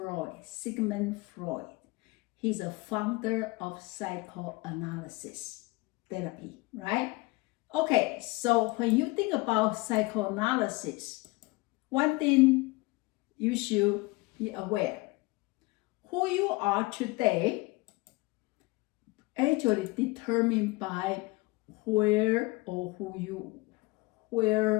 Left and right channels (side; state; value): right; quieter; 23.3 dB